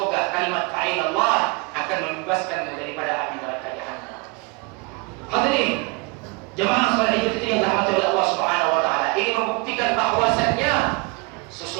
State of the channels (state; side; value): quieter; left; 28.5 dB